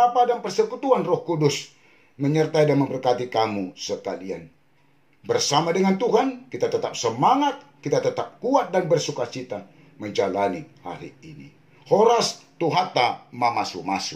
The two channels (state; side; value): identical; both; correlation 1.00